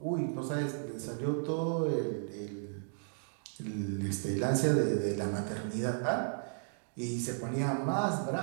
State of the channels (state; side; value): silent; left; digital silence